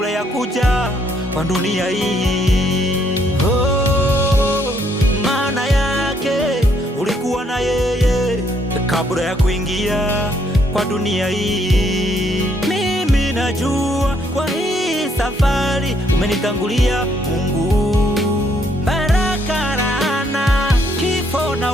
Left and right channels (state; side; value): normal; both; correlation 0.70